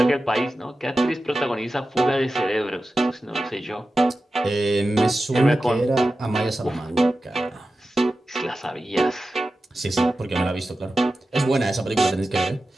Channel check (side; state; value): both; normal; correlation 0.93